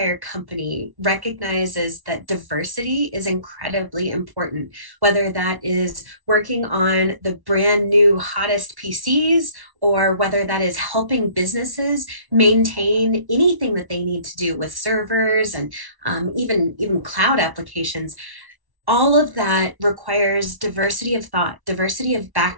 company recognizes that diversity is incredibly important, whether that is working on the brand new hottest PCs or whether that is helping businesses maintain anything that they need to do with servers and even cloud applications. all of that requires diversity of thought, diversity of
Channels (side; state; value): left; late; 1.1 ms